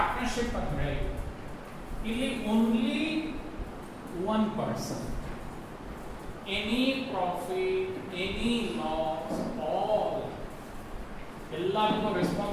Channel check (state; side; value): identical; both; correlation 1.00